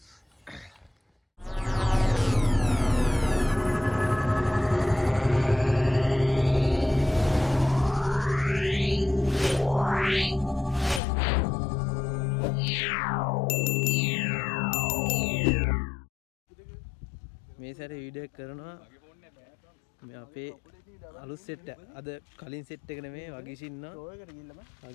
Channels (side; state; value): right; drops out; at 11.0 s